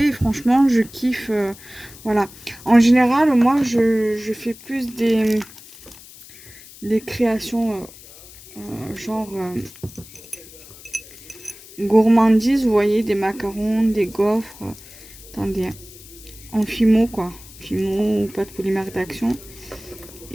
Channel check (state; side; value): noise; left; hiss, 19 dB below the sound